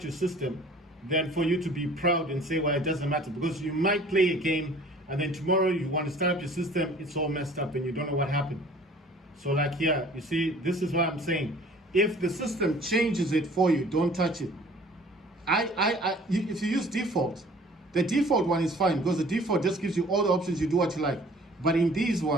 your system than for you to be proud and say, well, it doesn't matter, because you might play a game and then tomorrow you want to start up your system, it's all messed up and you don't know what happened. So like here, you see, this is what I'm saying. If the system changes it for you, don't touch it. If you use default, the default one is fine because the default just gives you all the options, you do what you like. But in these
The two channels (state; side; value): normal; both; correlation 0.51